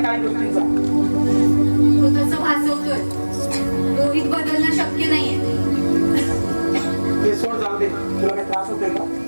काही गोष्टींचा. तो तसं भासवतोय. रोहित बदलणं शक्य नाहीये. ते सोड, जाऊ दे. तुला काही त्रास होतोय का?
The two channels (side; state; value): both; inverted; correlation -1.00